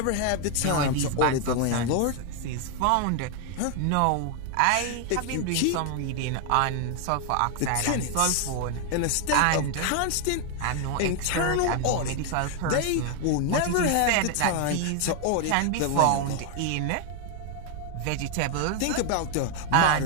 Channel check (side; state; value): both; different; correlation 0.01